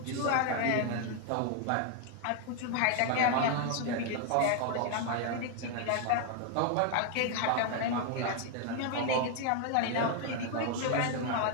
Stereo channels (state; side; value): different; both; correlation 0.00